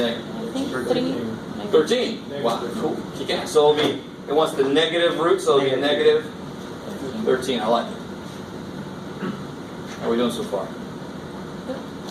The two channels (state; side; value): identical; both; correlation 1.00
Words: think? I think 13. Wow, cool. Kick ass. So it wants the negative root, so it'll be negative 13. I like it. How are we doing so far?